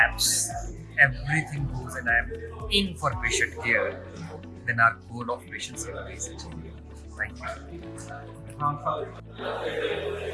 everything goes and I am in for patient care, then our goal of patient safety is achieved. Thank you.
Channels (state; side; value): identical; both; correlation 1.00